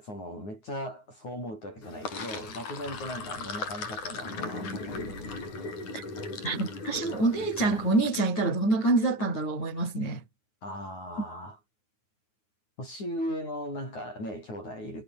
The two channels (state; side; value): late; right; 9.5 ms